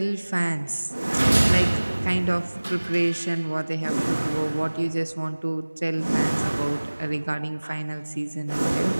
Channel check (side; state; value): both; inverted; correlation -1.00